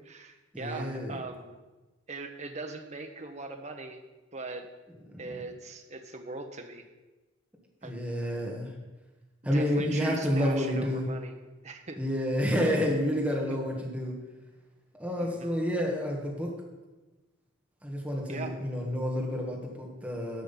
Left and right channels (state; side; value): normal; both; correlation 0.68